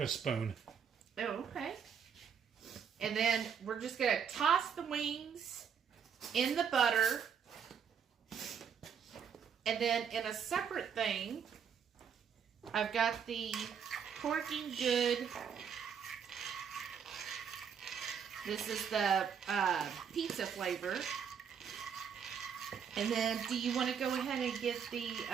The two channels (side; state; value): left; quieter; 7.4 dB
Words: spoon. Oh, okay. And then we're just going to toss the wings in the butter. And then in a separate thing, I've got the Porking Good. This is the pizza flavor. And then do you want to go ahead and get the